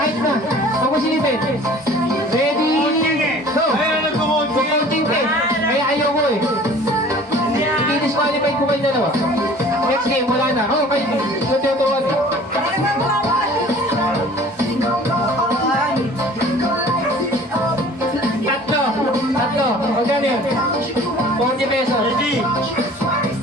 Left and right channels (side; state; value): both; normal; correlation 0.47